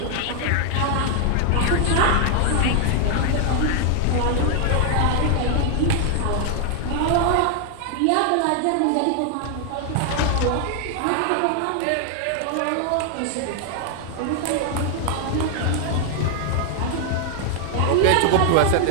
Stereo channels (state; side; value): different; both; correlation 0.00